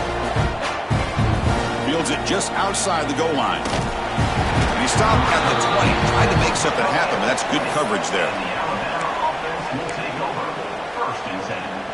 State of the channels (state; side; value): identical; both; correlation 1.00